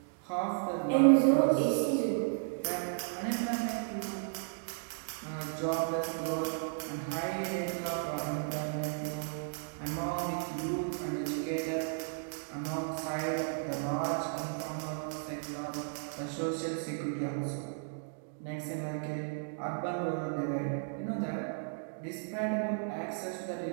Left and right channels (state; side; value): silent; left; digital silence